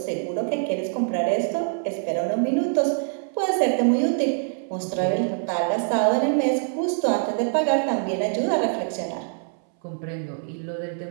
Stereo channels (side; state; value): left; silent; 62 dB below the other